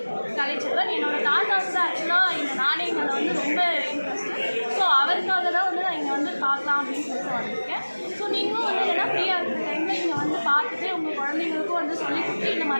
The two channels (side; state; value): both; inverted; correlation -1.00